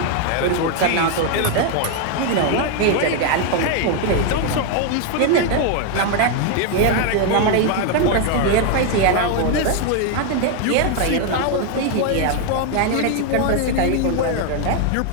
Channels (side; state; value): both; different; correlation 0.01